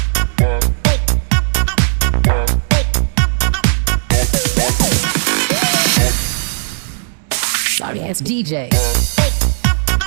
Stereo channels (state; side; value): silent; left; 70 dB below the other